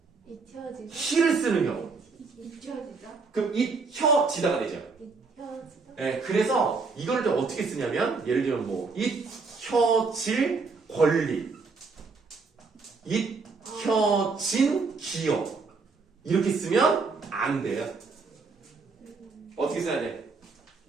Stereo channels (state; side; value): quieter; left; 4.4 dB